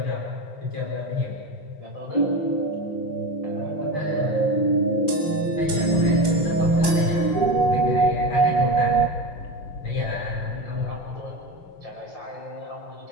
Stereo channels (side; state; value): right; late; 6.0 ms